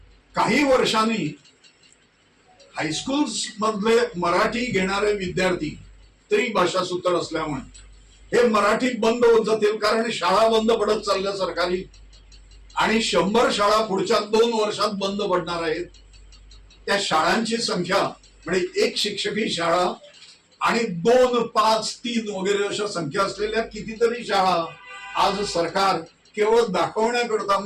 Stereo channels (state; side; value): identical; both; correlation 1.00